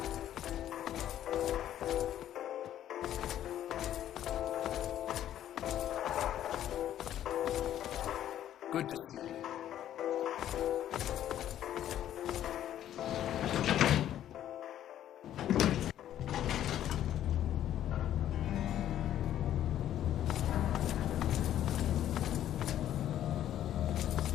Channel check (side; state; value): right; quieter; 11.5 dB